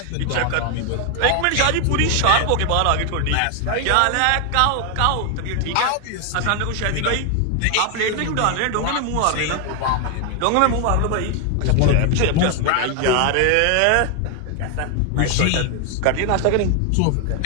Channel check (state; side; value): different; both; correlation 0.00